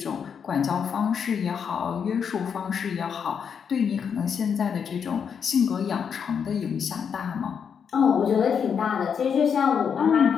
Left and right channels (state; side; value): quieter; right; 7.0 dB